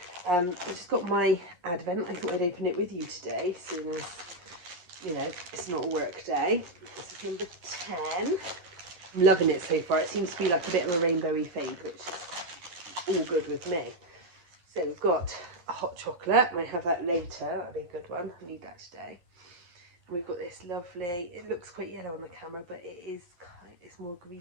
I just got my advent. I thought I'd open it with you today, seeing as, you know, it's not a work day. This is number 10. I'm loving it so far. It seems to be like a bit of a rainbowy fade, which is all good with me. So we've got a hot chocolate. Might have that later. That'll be a good one. I need that today. And we've got this lovely, it looks quite yellow on the camera, but it's more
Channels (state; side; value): late; left; 11 ms